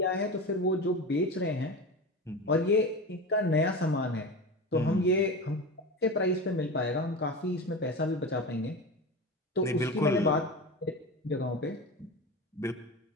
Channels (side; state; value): both; normal; correlation 0.27